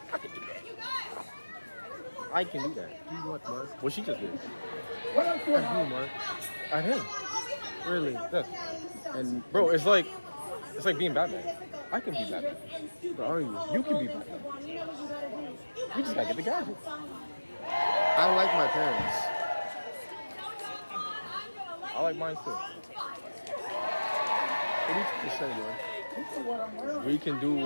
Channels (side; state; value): both; inverted; correlation -1.00